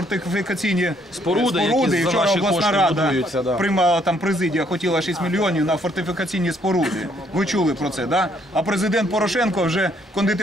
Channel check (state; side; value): normal; both; correlation 0.68